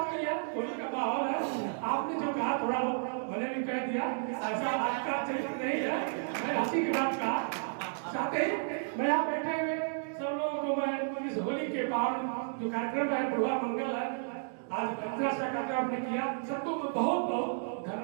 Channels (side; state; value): left; silent; digital silence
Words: नहीं है, होली का माहौल है। आपने जो कहा थोड़ा मैंने भी कह दिया, ऐसा आपका चरित्र नहीं है, मैं हंसी की बात कहा। साथ ही मैं यहाँ बैठे हुए सब लोगों को मैं इस होली के पावन जो कार्यक्रम है, बुढ़वा मंगल है, आज इतना सा कार्यक्रम आपने किया, सबको मैं बहुत बहुत